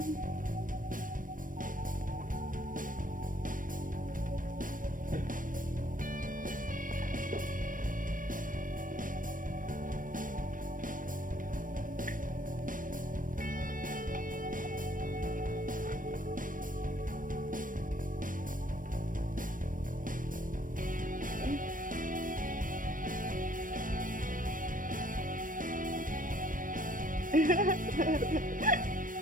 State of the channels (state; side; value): late; left; 0.39 ms